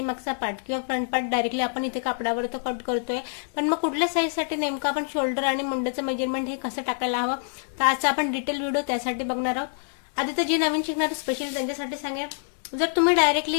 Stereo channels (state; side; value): silent; right; 61 dB below the other